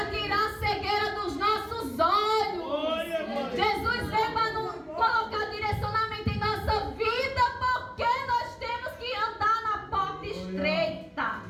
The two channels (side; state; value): both; identical; correlation 1.00